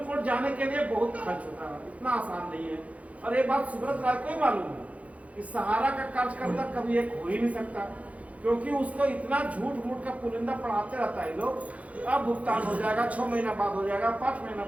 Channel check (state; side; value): late; left; 0.066 ms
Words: कोर्ट जाने के लिए बहुत खर्च होता है, इतना आसान नहीं है। और ये बात सुब्रत राय को ही मालूम है कि सहारा का कार्यकर्ता कभी एक हो ही नहीं सकता, क्योंकि उसको इतना झूठ मूठ का पुलिंदा पढ़ाते रहता है लोग कि अब भुगतान हो जाएगा, 6 महीना बाद हो जाएगा, 5 महीना